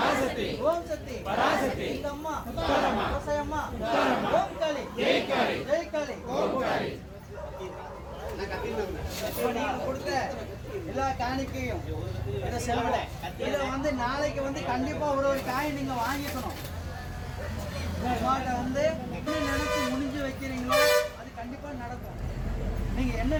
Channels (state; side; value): identical; both; correlation 1.00